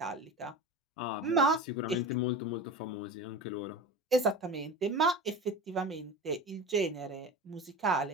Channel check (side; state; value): both; normal; correlation 0.30